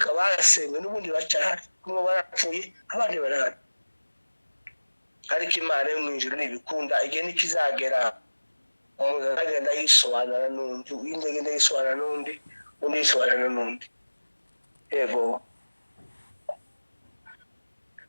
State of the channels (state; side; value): inverted; both; correlation -1.00